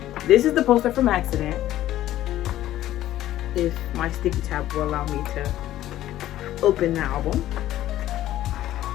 this is the poster from Accident. If my sticky tab will allow me to open the album.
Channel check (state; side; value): quieter; right; 13.6 dB